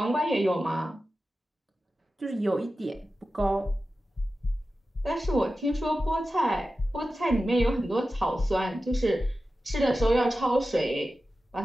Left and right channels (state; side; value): normal; both; correlation 0.93